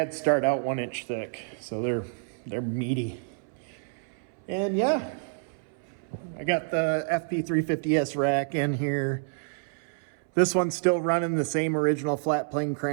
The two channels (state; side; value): silent; left; 59 dB below the other